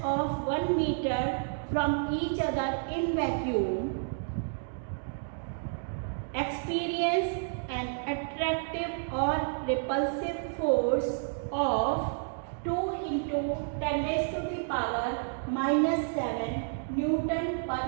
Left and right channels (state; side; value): silent; left; digital silence